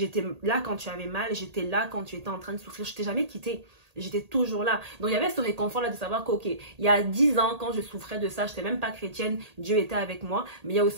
là quand tu avais mal. J'étais là quand tu étais en train de souffrir. Je t'ai jamais quitté. J'étais toujours là. Donc, il y avait ce réconfort-là de savoir qu'ok, il y a 10 ans, quand je souffrais de ça, je n'étais même pas chrétienne, Dieu était avec moi. Mais il y a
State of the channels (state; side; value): late; left; 1.8 ms